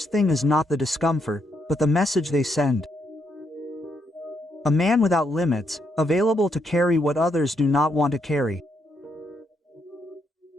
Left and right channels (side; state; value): both; normal; correlation 0.77